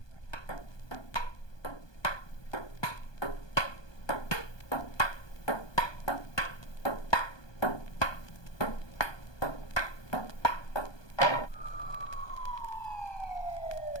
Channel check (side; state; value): right; late; 1.2 ms